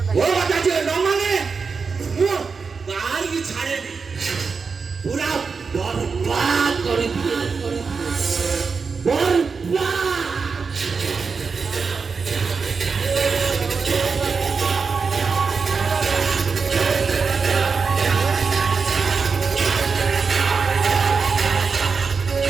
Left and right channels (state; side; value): quieter; left; 5.1 dB